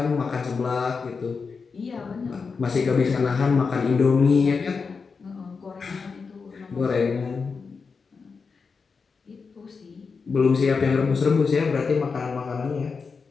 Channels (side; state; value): right; quieter; 5.1 dB